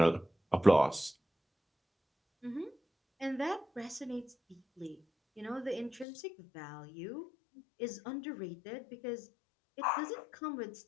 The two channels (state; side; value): drops out; right; at 6.1 s